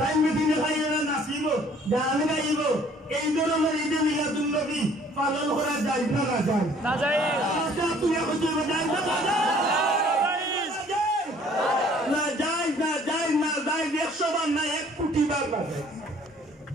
মেদিনে খাইয়া নাচিব গান গাইব এই ধরনের ঈদে মিলাদুন নবী পালন করা যায় না না যায় না যায় আচ্ছা তুমি কইছো যায় না যায় না যায় না যায় 100 বার না 1 কোটি বার না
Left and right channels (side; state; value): both; normal; correlation 0.57